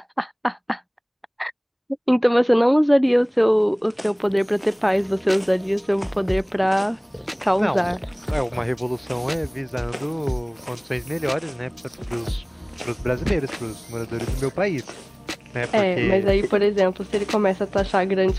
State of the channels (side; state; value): both; identical; correlation 1.00